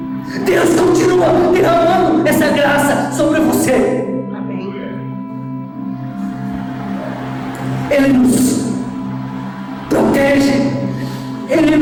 Deus continua derramando essa graça sobre você. Amém. Ele nos protege, Ele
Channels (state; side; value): identical; both; correlation 1.00